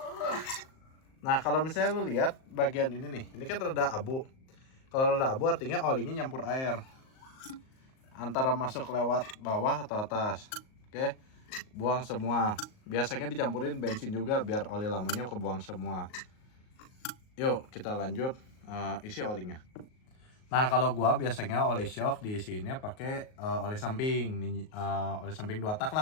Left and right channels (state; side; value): late; right; 38 ms